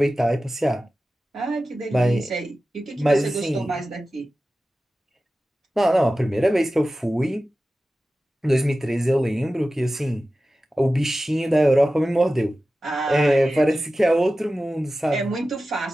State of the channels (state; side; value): normal; both; correlation 0.95